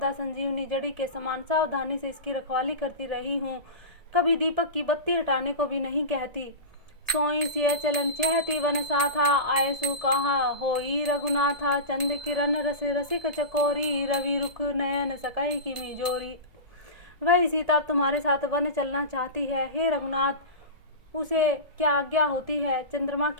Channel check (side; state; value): left; late; 1.7 ms